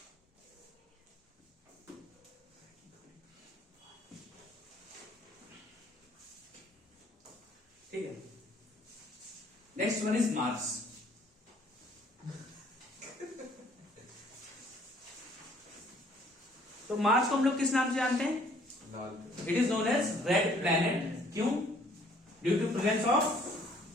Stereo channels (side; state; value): both; normal; correlation 0.60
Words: ठीक है, नेक्स्ट वन इज मार्स। तो मार्स को हम लोग किस नाम से जानते हैं, लाल। It is known as red planet. क्यों, ड्यू टू प्रेजेंस ऑफ,